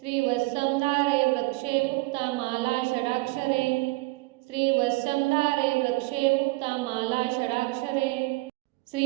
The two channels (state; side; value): quieter; left; 23.5 dB